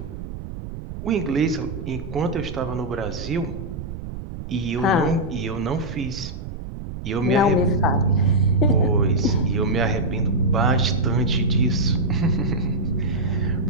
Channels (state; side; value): noise; right; rumble, 9 dB below the sound